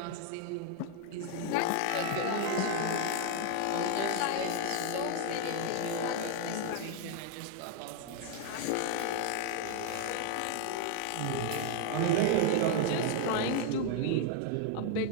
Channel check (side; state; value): both; different; correlation 0.00